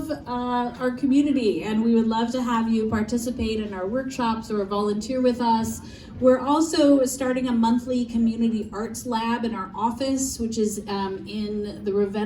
our community, and we would love to have you participate in our workshops or volunteer with us. We're also starting a monthly community arts lab in our office, which is in the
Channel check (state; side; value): identical; both; correlation 1.00